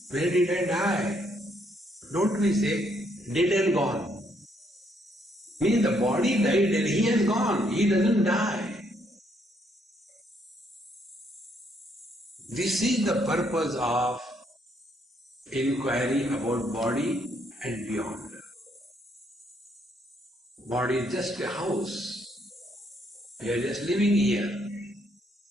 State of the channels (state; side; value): normal; both; correlation 0.71